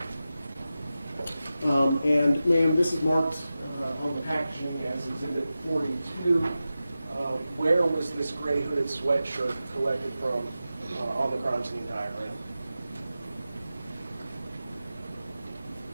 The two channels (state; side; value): inverted; both; correlation -0.93